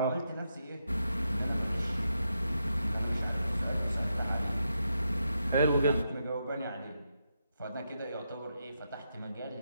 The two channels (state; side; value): inverted; both; correlation -0.83